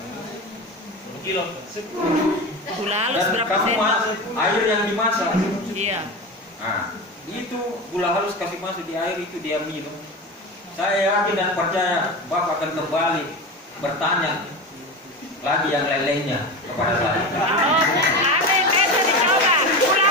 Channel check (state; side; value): normal; both; correlation 0.25